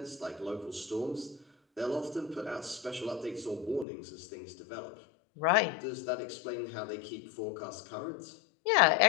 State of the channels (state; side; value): drops out; right; at 3.9 s